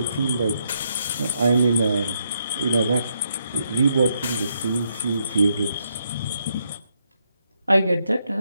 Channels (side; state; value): both; inverted; correlation -0.78